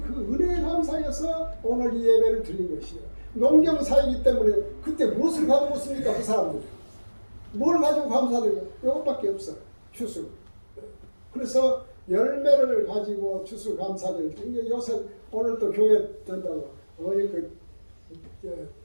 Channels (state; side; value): inverted; both; correlation -1.00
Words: 은혜에 감사해서 오늘 이 예배를 드린 것이에요. 농경사이기 때문에 그때 무엇을 가지고 있습니까? 그 사람들이 뭘 가지고 감사드려요? 이것밖에 없어요. 추수. 그래서 열매를 가지고 추수감사절. 요새 오늘 또 교회 된다고